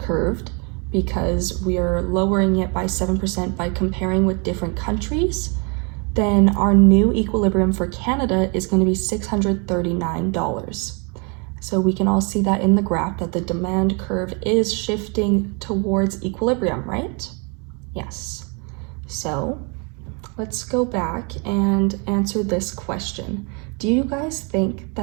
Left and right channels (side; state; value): left; quieter; 33.8 dB